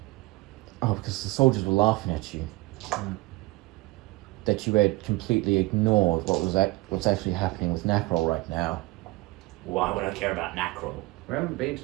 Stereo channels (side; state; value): left; quieter; 21.2 dB